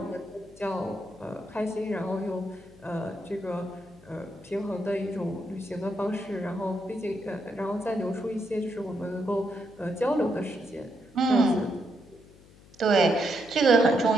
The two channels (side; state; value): left; noise; hum, 24 dB below the sound